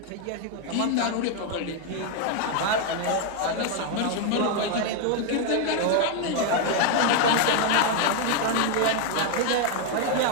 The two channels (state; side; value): different; both; correlation 0.00